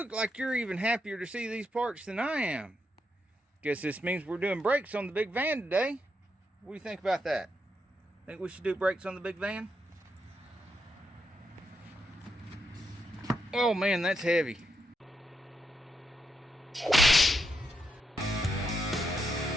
like you're even happier to see these parts than I am. Guess this means we're doing brakes on the big van today. What do you think about that? Think we should do brakes on the big van? Oh man, that's heavy.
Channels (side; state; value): both; normal; correlation 0.81